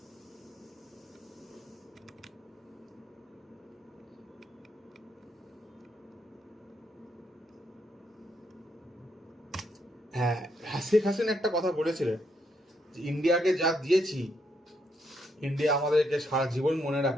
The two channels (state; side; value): normal; both; correlation 0.76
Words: হ্যাঁ, শেখ হাসিনা একটা কথা বলেছিলেন যে ইন্ডিয়াকে যা দিয়েছি, ইন্ডিয়া আমাদেরকে সারা জীবন মনে